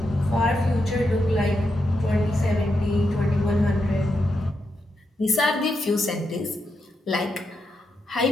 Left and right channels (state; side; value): normal; both; correlation 0.84